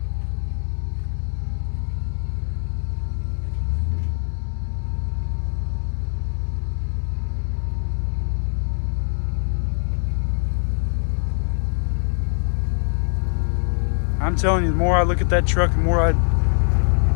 I'm telling you, the more I look at that truck, the more I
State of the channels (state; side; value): silent; right; digital silence